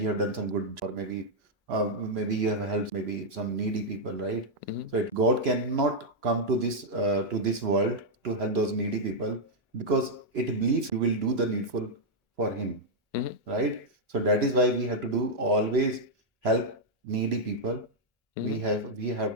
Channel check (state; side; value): normal; both; correlation -0.03